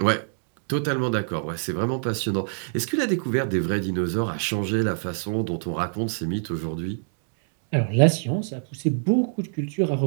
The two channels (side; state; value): left; silent; digital silence